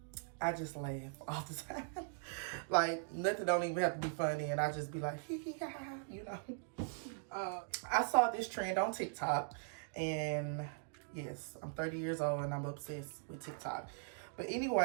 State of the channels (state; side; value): silent; left; digital silence